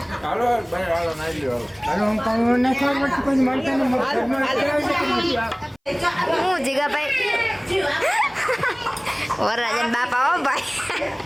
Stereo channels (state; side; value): identical; both; correlation 1.00